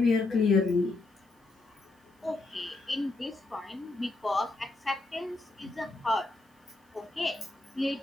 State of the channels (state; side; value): quieter; right; 3.1 dB